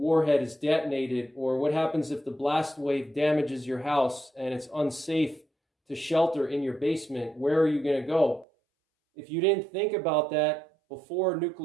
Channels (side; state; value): left; drops out; at 8.5 s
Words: is detonated? Or what happens if the blast wave damages your house and it's unsafe to shelter in your basement? Where are you going to go? If you didn't think about that before